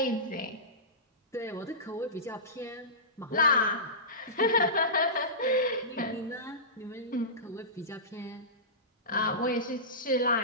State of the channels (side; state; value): both; normal; correlation -0.20